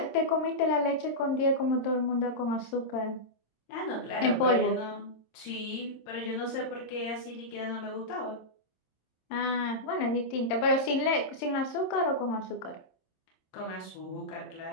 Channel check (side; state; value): right; late; 27 ms